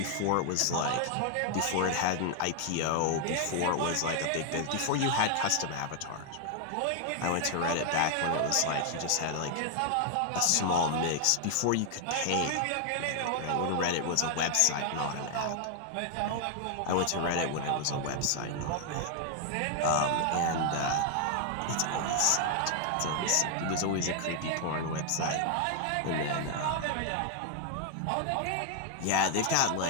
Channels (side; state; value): both; different; correlation 0.00